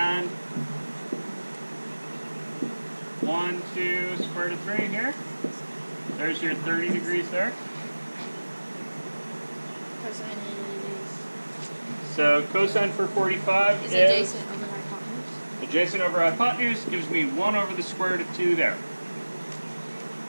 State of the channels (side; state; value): both; inverted; correlation -1.00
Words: 1, 2 square root of 3 here. There's your 30 degrees there. Cosine So cosine for 45 is is adjacent over hypotenuse. adjacent over hypotenuse gives me 1 over the square root of 2 there.